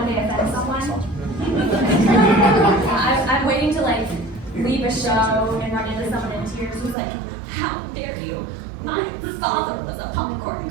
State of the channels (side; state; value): left; drops out; at 7.0 s